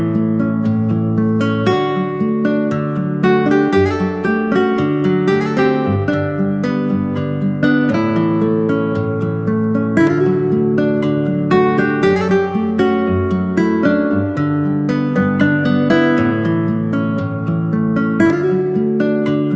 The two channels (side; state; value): both; identical; correlation 1.00